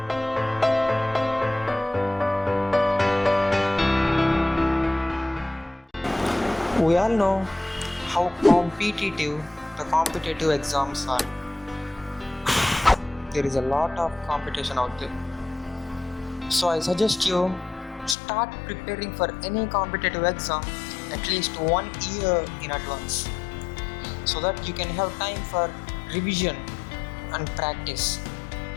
We all know how competitive the competitive exams are. There is a lot of competition out there. So I suggest you start preparing for any competitive exam at least 1 year in advance so that you can have time for revision and practice.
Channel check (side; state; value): right; drops out; at 18.2 s